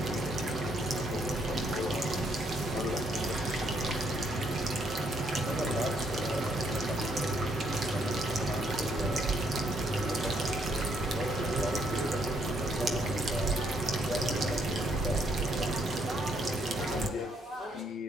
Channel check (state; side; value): normal; both; correlation 0.71